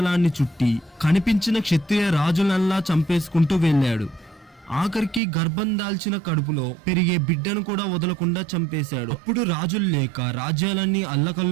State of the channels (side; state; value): left; drops out; at 5.2 s